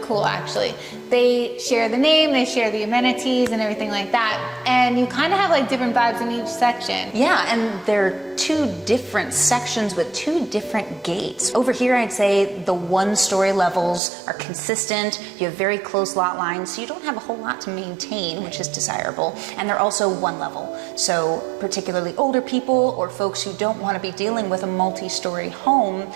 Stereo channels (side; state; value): left; drops out; at 14.0 s